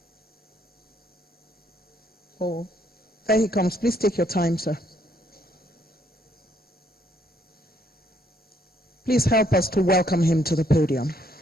Oh, there he comes. Please take your time, sir. Please help us to welcome him to the podium.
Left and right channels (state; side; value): normal; both; correlation 0.69